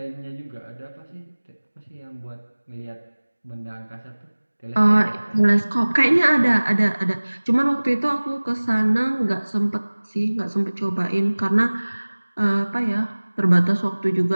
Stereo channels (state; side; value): inverted; both; correlation -1.00